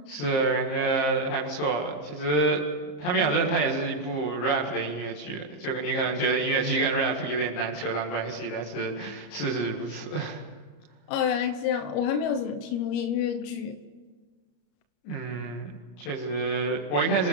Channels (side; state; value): right; late; 34 ms